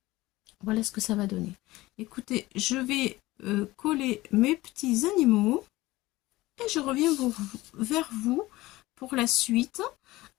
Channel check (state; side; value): quieter; right; 18.8 dB